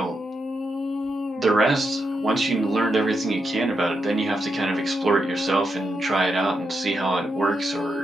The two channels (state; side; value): normal; both; correlation 0.84